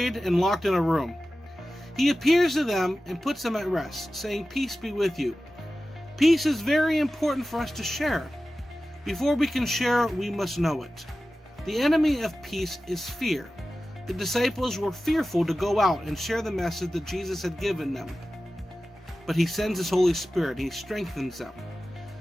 and locked in a room. He appears to them and puts them at rest, saying, "Peace be with you." Peace is very important for us to share. Before we can share, we must know it. The enemy of peace is fear. The disciples were fearful to go out and share the message that Jesus had given them. But he sends his Holy Spirit, he strengthens them.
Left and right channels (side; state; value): both; normal; correlation 0.95